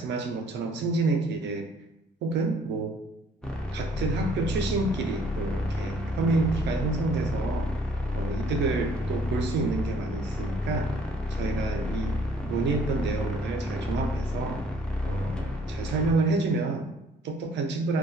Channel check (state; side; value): normal; both; correlation 0.60